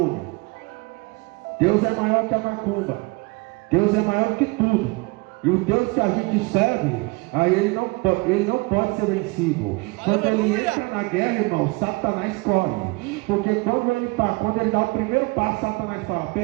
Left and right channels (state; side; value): quieter; left; 26.3 dB